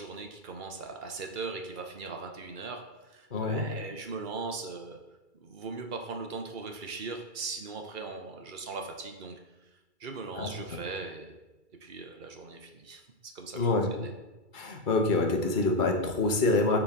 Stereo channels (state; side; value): late; left; 2.3 ms